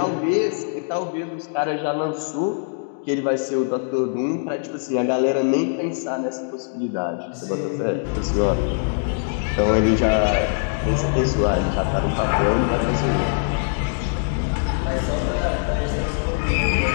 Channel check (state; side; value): silent; right; digital silence